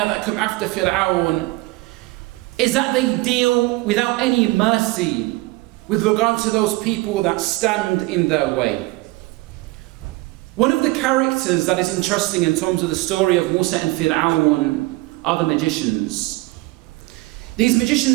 that come after Fir'aun, is that they deal without any mercy with regard to those people that stand in their way. One of the characters that is interesting in terms of the story of Musa and Fir'aun are the magicians. These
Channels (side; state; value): left; quieter; 21.6 dB